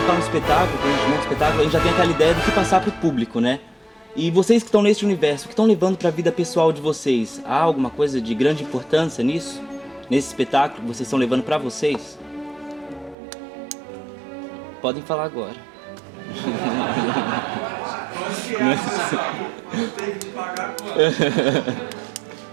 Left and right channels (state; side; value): drops out; left; at 13.2 s